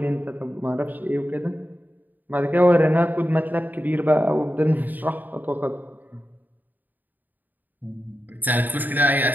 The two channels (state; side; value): late; left; 0.086 ms